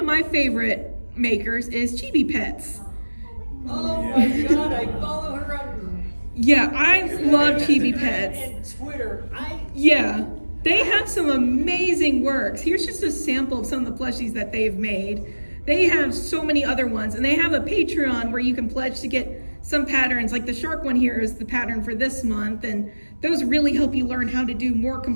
my favorite makers is Chibi Pets. Oh my God, I follow her on Yeah, I love Chibi Pets. and Twitter. Yeah, they have some amazing works. Here's just a sample of some of the plushies that they've made. They have so many other ones, and they have a Patreon where you can pledge to get some patterns. Like the shark one here is the pattern for this month, and those really help you learn how to do more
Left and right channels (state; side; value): inverted; both; correlation -1.00